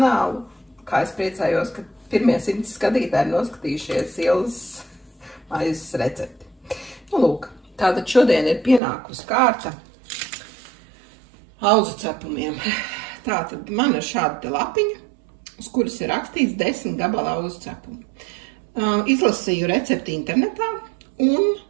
kā es priecājos, ka pirmie 100 skatītāji ir noskatījušies Ilzas maizes recepti. Nu, lūk, tātad šodien ir pienākusi kārta auzu cepumiem. Tātad man ir šāda te lapiņa, uz kuras ir rakstīts 10 gabala auzu cepumu. Izlasīju recepti internetā un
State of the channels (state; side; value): drops out; left; at 8.8 s